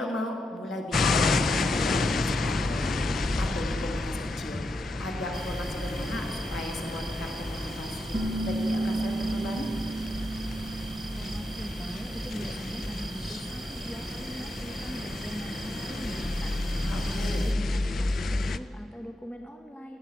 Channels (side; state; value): both; normal; correlation 0.85